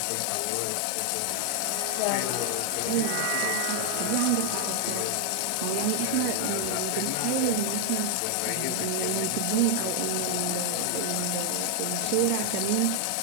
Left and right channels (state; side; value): different; both; correlation 0.00